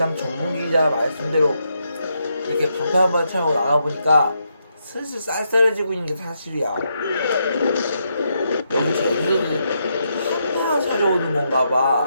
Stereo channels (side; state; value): both; inverted; correlation -0.81